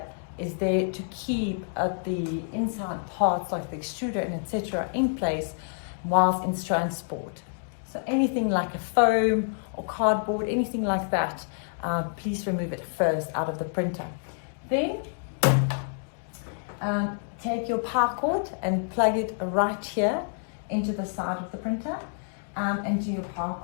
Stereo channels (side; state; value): right; silent; digital silence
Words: is there to keep the inside parts like the extruder and etc. in place whilst in transport. So anything like a foam or cardboard, anything like that, please remove it first out of the printer. Then take your power cord and plug it right here into the side of the printer and do your power